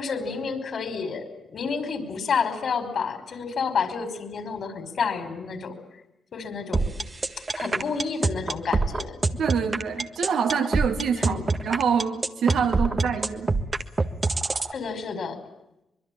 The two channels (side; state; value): both; normal; correlation 0.80